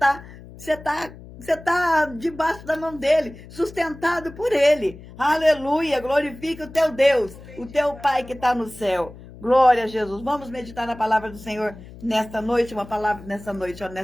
tá debaixo da mão dele, sustentado por ele. Aleluia, glorifica o teu Deus, o teu Pai que está no céu. Glória a Jesus. Vamos meditar na palavra do Senhor nesta noite,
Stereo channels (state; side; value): noise; left; hum, 17 dB below the sound